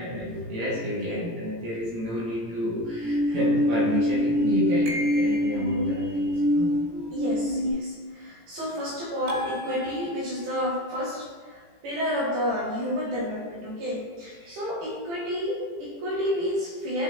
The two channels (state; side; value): late; left; 18 ms